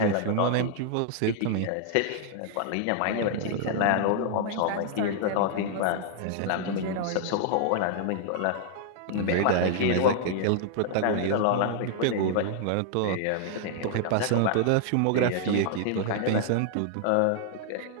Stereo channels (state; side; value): different; both; correlation -0.01